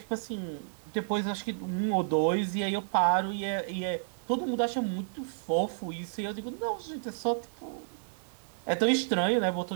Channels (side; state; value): left; silent; 57 dB below the other